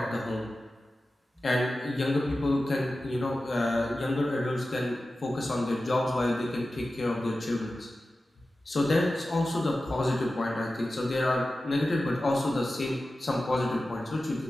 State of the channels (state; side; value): normal; both; correlation 0.94